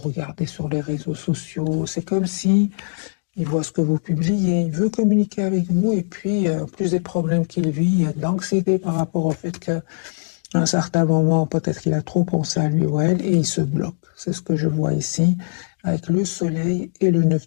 sur les réseaux sociaux. C'est comme si il voit ce que vous publiez, il veut communiquer avec vous, et puis plus des problèmes qu'il vit, il y a de l'anxiété par rapport au fait qu'à un certain moment, peut-être qu'il a trop pensé à lui ou à elle, et il se bloque. C'est ce que je vois ici, avec le soleil et le 9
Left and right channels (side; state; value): right; silent; digital silence